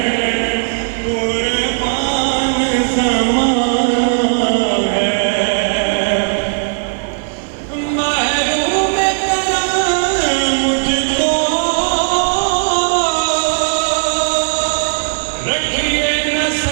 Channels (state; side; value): silent; left; digital silence